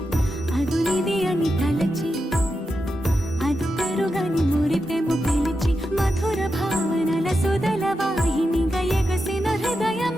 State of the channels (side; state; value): both; normal; correlation 0.88